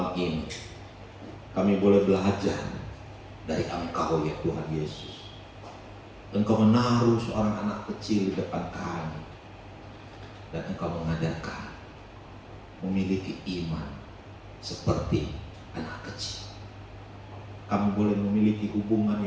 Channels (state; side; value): identical; both; correlation 1.00